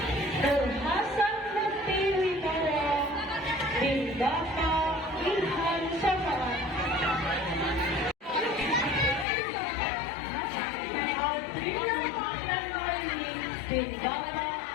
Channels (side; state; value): right; drops out; at 9.2 s